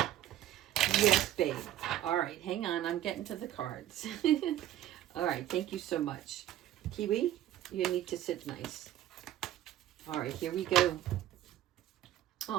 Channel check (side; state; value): left; quieter; 12.5 dB